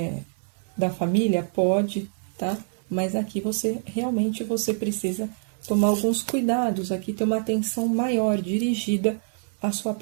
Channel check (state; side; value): silent; left; 61 dB below the other